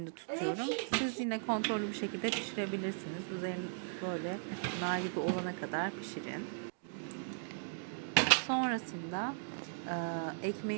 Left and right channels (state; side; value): silent; left; digital silence